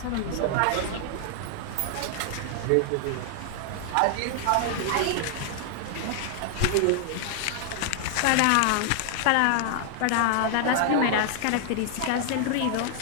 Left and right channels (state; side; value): different; both; correlation 0.00